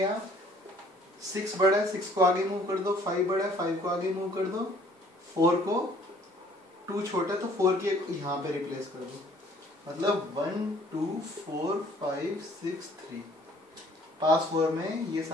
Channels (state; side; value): normal; both; correlation 0.58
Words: 6 बड़ा है, 6 को आगे मूव कर दो. 5 बड़ा है, 5 को आगे मूव कर दो. 4 को 2 छोटा है तो 4 की यहाँ पे रिप्लेस कर दो. मतलब 1 2 4 5 6 3. पास 4 में ये